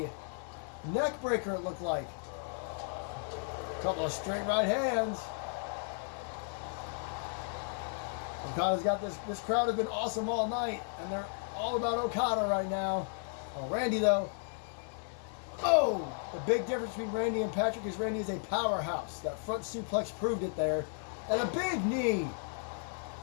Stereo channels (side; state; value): right; silent; 55 dB below the other